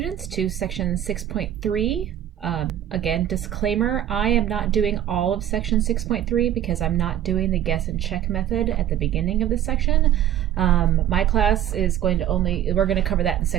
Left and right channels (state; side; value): quieter; left; 11.2 dB